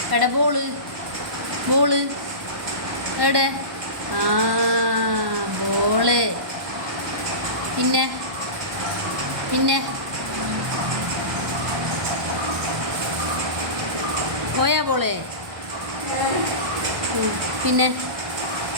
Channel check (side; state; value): left; late; 1.1 ms